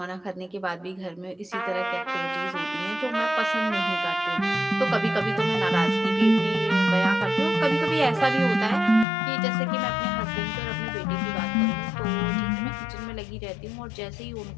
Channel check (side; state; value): right; drops out; at 9.1 s